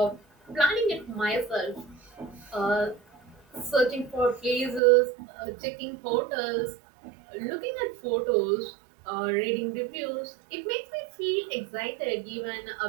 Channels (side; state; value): left; drops out; at 4.8 s